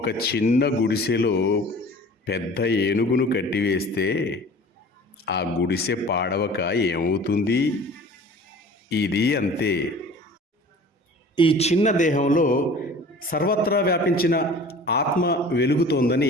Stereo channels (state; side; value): normal; both; correlation 0.44